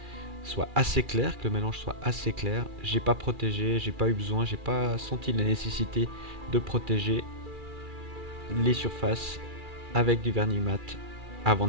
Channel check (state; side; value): late; left; 2.4 ms